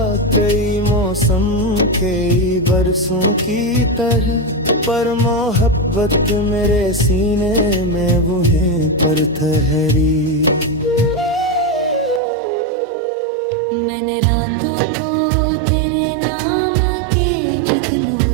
कई मौसम कई बरसों की तरह, पर मोहब्बत मेरे सीने में वहीं पर ठहरी। मैंने रातों को तेरे नाम के जुगनू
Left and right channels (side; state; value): left; drops out; at 12.2 s